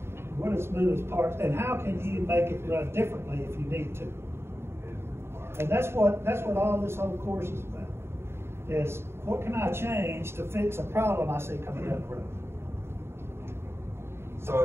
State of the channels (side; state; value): left; late; 0.12 ms